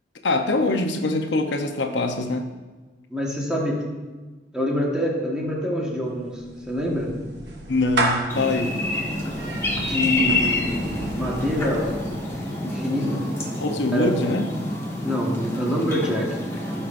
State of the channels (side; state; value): both; normal; correlation 0.43